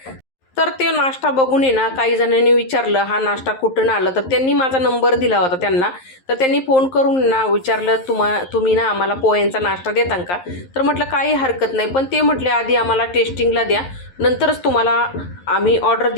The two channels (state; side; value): late; right; 11 ms